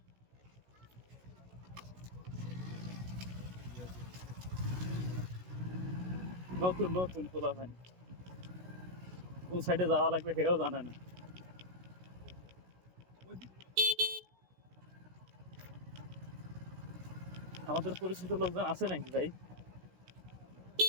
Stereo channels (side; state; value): left; late; 16 ms